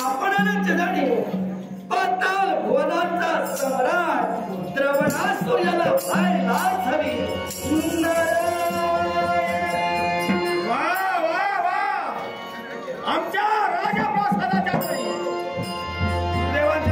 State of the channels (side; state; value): both; identical; correlation 1.00